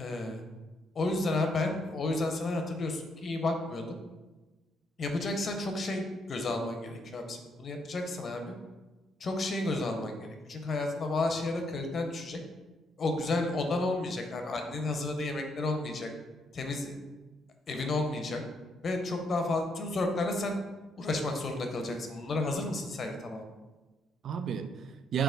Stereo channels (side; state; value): both; normal; correlation 0.74